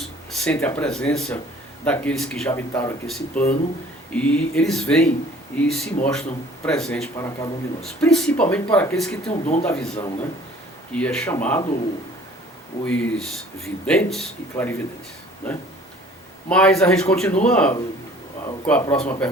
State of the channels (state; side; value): normal; both; correlation 0.52